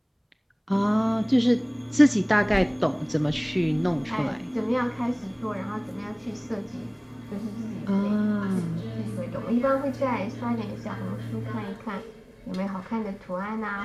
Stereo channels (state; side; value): identical; both; correlation 1.00